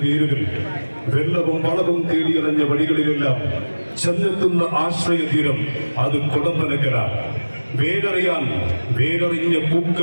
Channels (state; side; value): inverted; both; correlation -1.00